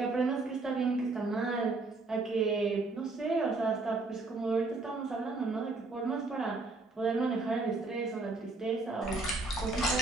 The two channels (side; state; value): left; quieter; 3.5 dB